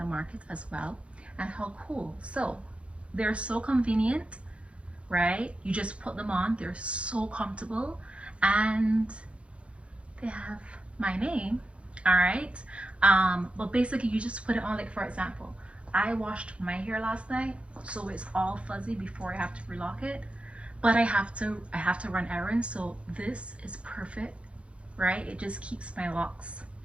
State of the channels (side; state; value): left; late; 0.060 ms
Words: markets as well. And how cool. So they're so convenient, right? You just put them on, they're so comfortable, and they have my name. All right. But basically you just put it on, like for example, I washed my hair last night, so it's all fuzzy before I have to relock it, but I have to run errands, so this is perfect, right? It just keeps my locks.